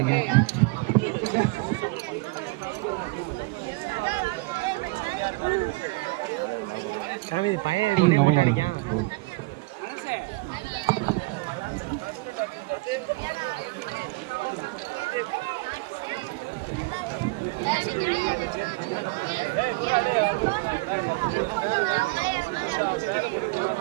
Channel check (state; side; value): quieter; left; 25.8 dB